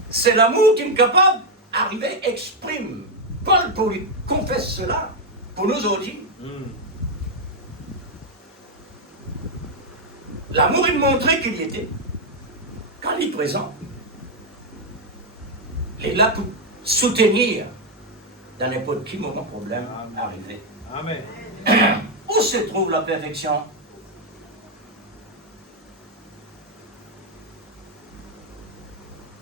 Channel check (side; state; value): both; normal; correlation 0.02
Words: C'est l'amour qui est capable d'arriver, exprime. Paul, pour lui confesse cela, pour nous aujourd'hui. L'amour, il montrait qu'il y était. Quand il est présent, il est là pour soutenir dans n'importe quel moment problème arrivé. Amen. Où se trouve la perfection?